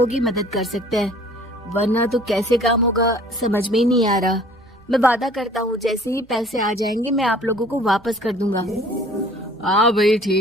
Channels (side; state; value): right; noise; hum, 29 dB below the sound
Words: ही मदद कर सकते हैं, वरना तो कैसे काम होगा समझ में ही नहीं आ रहा। मैं वादा करता हूँ जैसे ही पैसे आ जाएंगे मैं आप लोगों को वापस कर दूंगा। हाँ भाई,